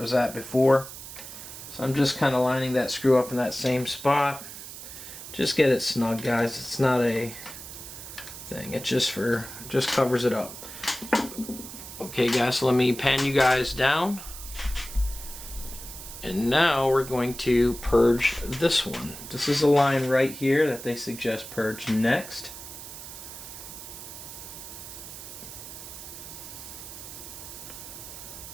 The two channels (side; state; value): right; noise; hiss, 12 dB below the sound